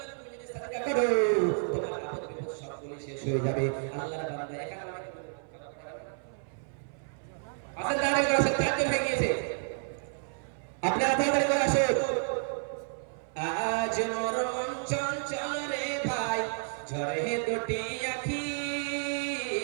তুমি যদি সাদকা করো তোমার আপদ বিপদ সবগুলো শেষ হয়ে যাবে। আল্লাহর বান্দা এখানে আসেন দাঁড়িয়ে আসেন, চারজন হয়ে গিয়েছে, আপনারা তাড়াতাড়ি করে আসুন। আজ মোর মন চঞ্চল রে ভাই, ঝরে দুটি আখি,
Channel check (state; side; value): silent; left; 57 dB below the other